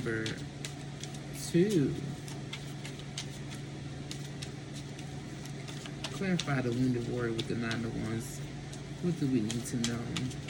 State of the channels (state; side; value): identical; both; correlation 1.00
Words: 2. clarify the wounded warrior with the Nine of Wands. What do we need to know?